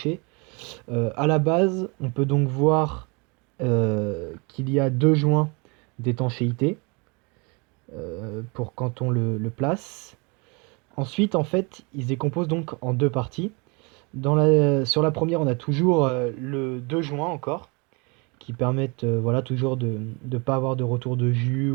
À la base, on peut donc voir qu'il y a deux joints d'étanchéité pour quand on le place. Ensuite, en fait, ils se décomposent donc en deux parties. Sur la première, on a toujours le deux joints encore, qui permettent voilà, toujours de ne pas avoir de retour de jus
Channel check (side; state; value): left; quieter; 30.2 dB